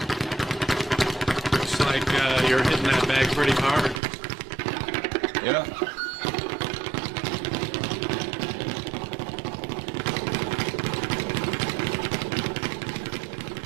Looks like you're hitting that bag pretty hard. Yeah.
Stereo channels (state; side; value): drops out; left; at 4.0 s